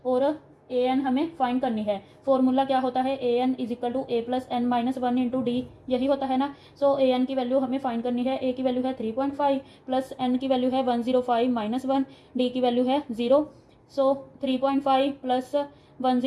और ए एन हमें फाइंड करनी है। फॉर्मूला क्या होता है, A N is equal to A plus N minus 1 into D, यही होता है ना। सो ए एन की वैल्यू हमें फाइंड करनी है। ए की वैल्यू है 3.5 प्लस एन की वैल्यू है 105 माइनस 1, डी की वैल्यू है 0। सो 3.5 प्लस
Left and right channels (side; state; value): both; identical; correlation 1.00